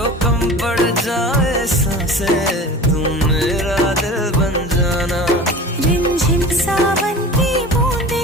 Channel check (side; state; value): both; normal; correlation 0.37